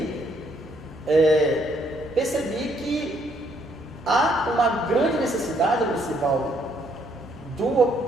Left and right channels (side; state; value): both; normal; correlation 0.69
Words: que há uma grande necessidade, Lucivaldo,